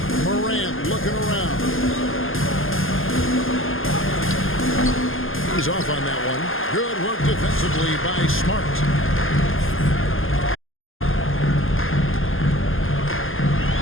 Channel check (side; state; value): right; late; 0.59 ms